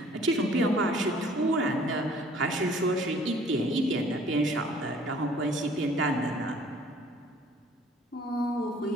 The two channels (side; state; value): both; normal; correlation 0.55